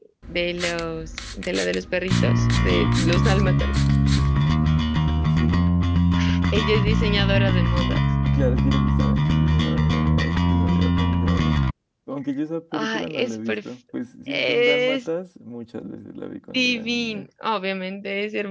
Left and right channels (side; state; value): both; identical; correlation 1.00